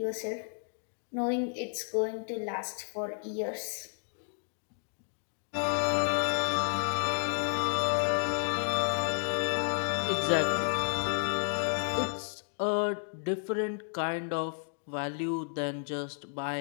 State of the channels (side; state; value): right; silent; digital silence